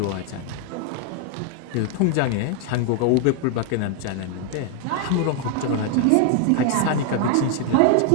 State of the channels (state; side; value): different; both; correlation 0.00